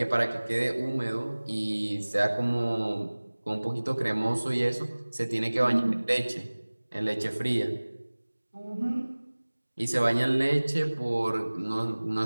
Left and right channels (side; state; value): both; inverted; correlation -1.00